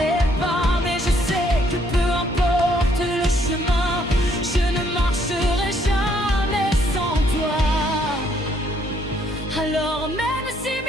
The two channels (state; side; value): normal; both; correlation 0.68